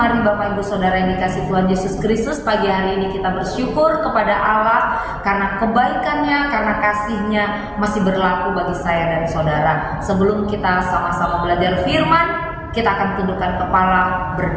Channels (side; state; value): both; identical; correlation 1.00